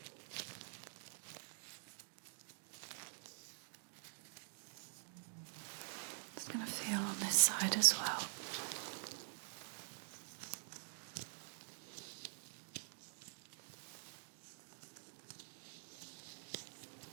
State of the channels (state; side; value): silent; left; digital silence